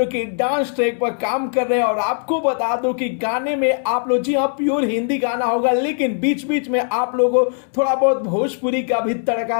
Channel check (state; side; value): silent; right; digital silence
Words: कि डांस ट्रैक पर काम कर रहे हैं। और आपको बता दो कि गाने में आप लोग, जी हाँ, प्योर हिंदी गाना होगा, लेकिन बीच बीच में आप लोगों को थोड़ा बहुत भोजपुरी का भी